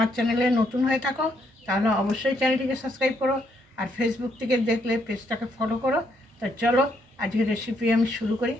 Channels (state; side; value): normal; both; correlation 0.74